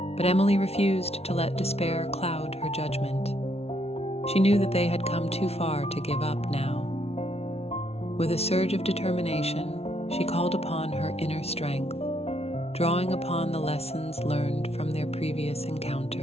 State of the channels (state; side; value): late; right; 0.30 ms